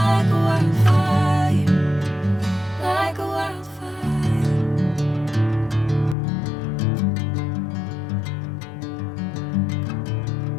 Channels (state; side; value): drops out; right; at 6.2 s